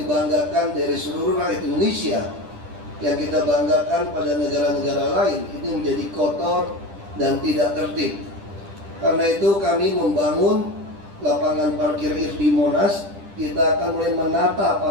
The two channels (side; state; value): left; late; 10 ms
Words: dari seluruh rakyat Indonesia, yang kita banggakan pada negara-negara lain, ini menjadi kotor dan tidak tertib. Karena itu kami membangun lapangan parkir di Monas. Kita akan mulai menata